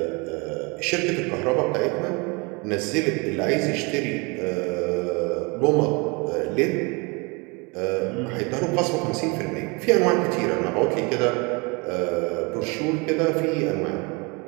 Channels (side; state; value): left; quieter; 29.1 dB